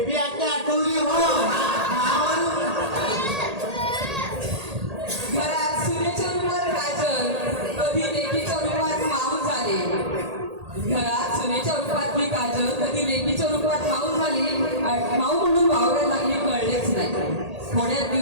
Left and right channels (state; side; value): late; left; 1.8 ms